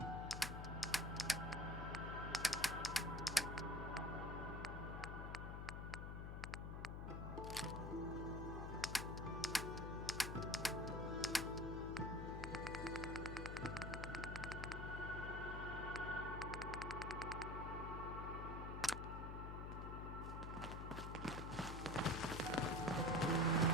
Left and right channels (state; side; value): noise; left; hum, 4 dB below the sound